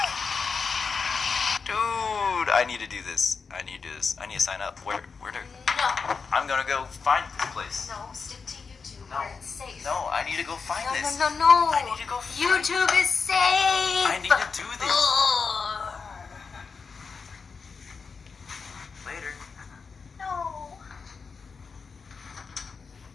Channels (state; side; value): quieter; right; 5.2 dB